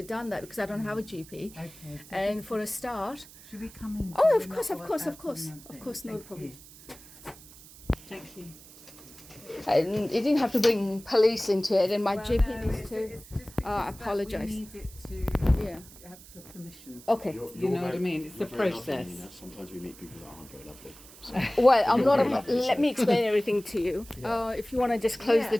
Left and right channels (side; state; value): right; noise; hiss, 20 dB below the sound